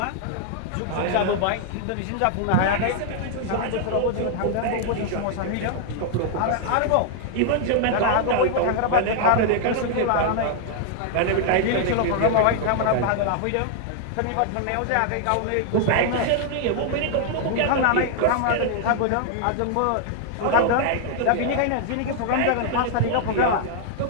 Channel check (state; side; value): different; both; correlation 0.00